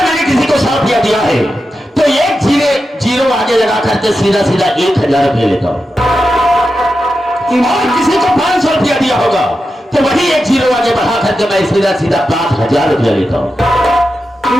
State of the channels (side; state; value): both; normal; correlation 0.90